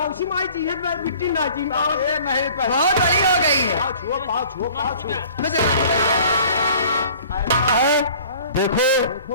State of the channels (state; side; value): inverted; both; correlation -0.49